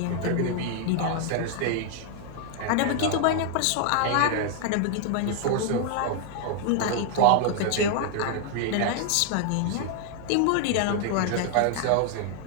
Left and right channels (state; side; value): different; both; correlation 0.00